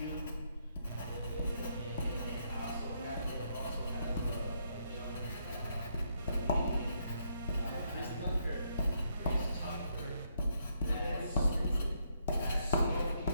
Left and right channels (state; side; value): inverted; both; correlation -0.75